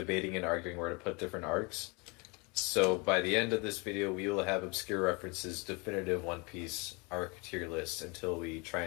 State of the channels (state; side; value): quieter; right; 29.3 dB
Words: and arguing where to put different arcs. So by the end of this video, we will have obscure references, definitive One Piece arc tier list until we try